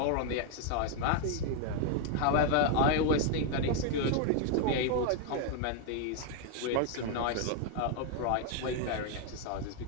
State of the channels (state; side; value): different; both; correlation 0.01